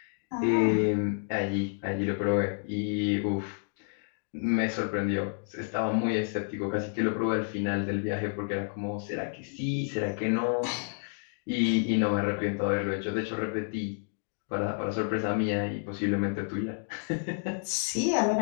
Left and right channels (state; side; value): silent; right; digital silence